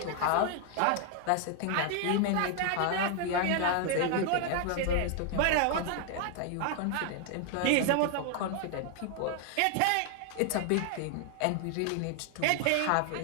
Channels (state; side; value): different; both; correlation 0.00